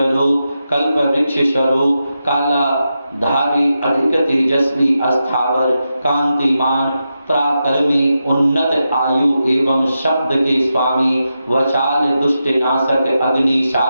रूप कल्प वृक्ष स्वरूप काला धारी अधिक तेजस्वी अस्थावर कांतिमान पराक्रमी उन्नत आयु एवं शब्द के स्वामी वचाल दुष्ट नाशक अग्नि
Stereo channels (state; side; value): inverted; both; correlation -0.88